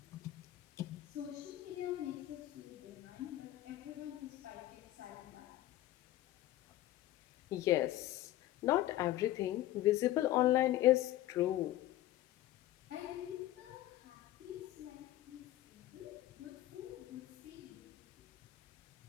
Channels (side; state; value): right; quieter; 14.7 dB